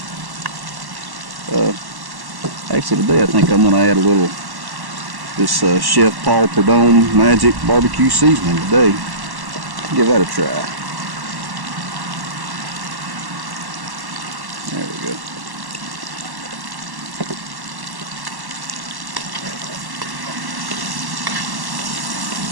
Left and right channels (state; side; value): late; left; 1.1 ms